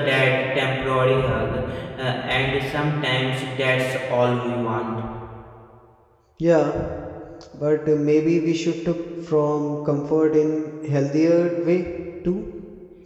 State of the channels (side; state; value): both; identical; correlation 1.00